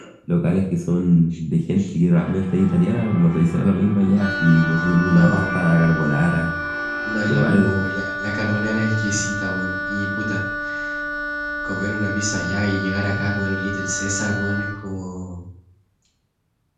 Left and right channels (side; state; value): both; identical; correlation 1.00